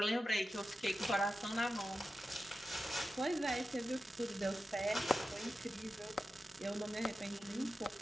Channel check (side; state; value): both; normal; correlation 0.92